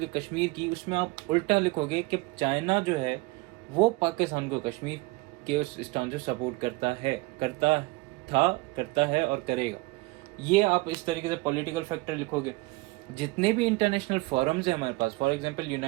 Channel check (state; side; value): quieter; left; 23.1 dB